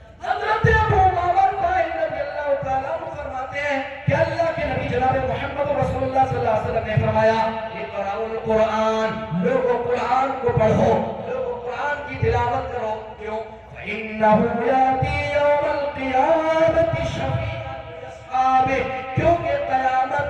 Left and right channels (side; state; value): both; identical; correlation 1.00